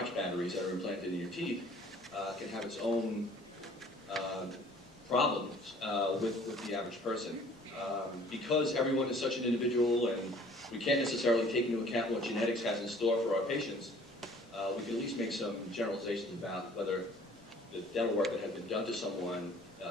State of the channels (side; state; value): both; normal; correlation 0.53